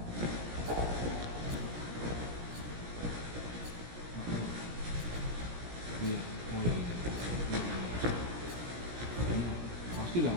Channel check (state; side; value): late; left; 17 ms